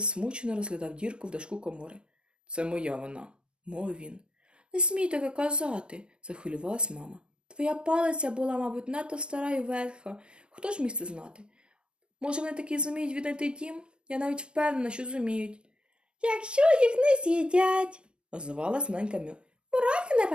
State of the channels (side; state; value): left; late; 0.048 ms